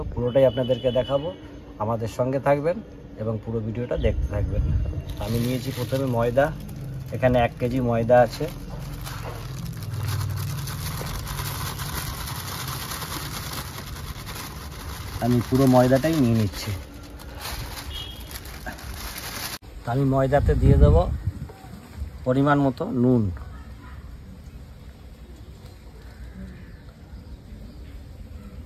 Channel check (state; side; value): identical; both; correlation 1.00